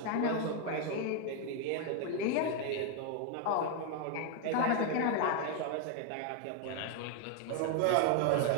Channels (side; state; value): both; different; correlation 0.00